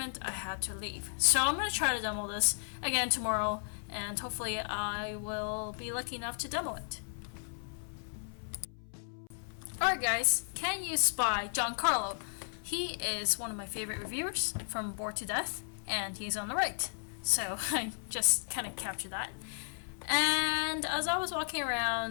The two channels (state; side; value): silent; right; 55 dB below the other